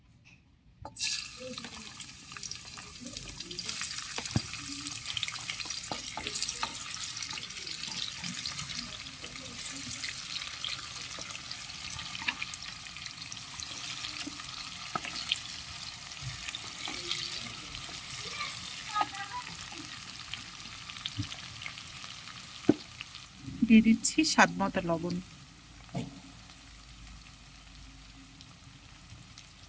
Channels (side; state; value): both; identical; correlation 1.00